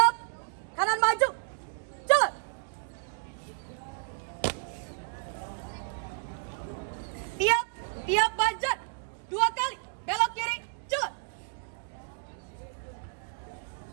Kanan maju. Jalan. Tiap banjar. 2 kali. Belok kiri. Jalan.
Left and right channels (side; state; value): left; silent; digital silence